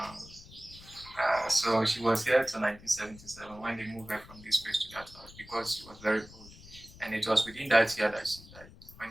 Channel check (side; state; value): left; noise; rumble, 19 dB below the sound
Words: So she was here till 1977 when they moved her from this place to that house because she was very old. And it was within that year that she died